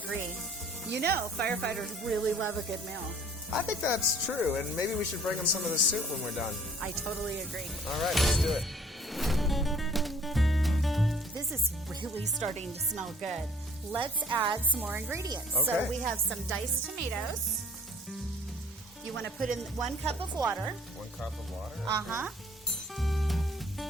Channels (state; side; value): normal; both; correlation 0.56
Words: You know, firefighters really love a good meal. I think that's true, and maybe we should bring them some of the soup when we're done. I totally agree. All right, let's do it. This is really starting to smell good. Let's add some more ingredients. Okay. So we have some diced tomatoes. You want to put in 1 cup of water. 1 cup of water. Uh-huh.